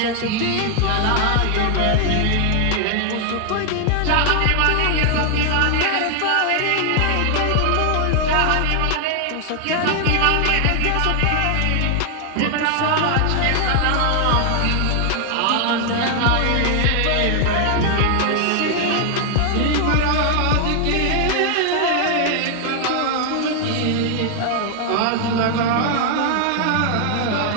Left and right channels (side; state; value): both; different; correlation 0.00